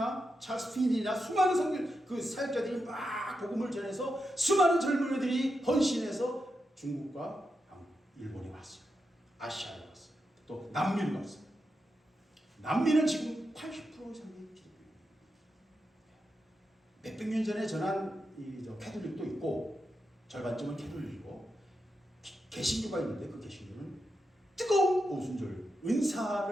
찰스 핀이나 수많은 그 사역자들이 막 복음을 전해서 수많은 젊은이들이 헌신해서 중국과 일본에 왔어요. 아시아에 왔어요. 또 남미로 왔어요. 남미는 지금 80% 이상의 기독교예요. 몇백 년 전에 전한 캐톨릭도 있고 절반쯤은 캐톨릭이고 개신교가 있는데 그 개신교는 뜨거운 오순절,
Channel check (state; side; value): normal; both; correlation 0.87